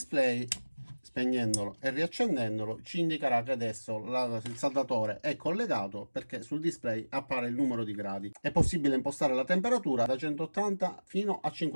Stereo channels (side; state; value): both; inverted; correlation -1.00